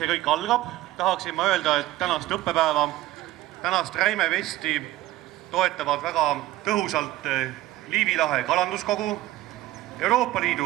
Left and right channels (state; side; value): quieter; left; 16.1 dB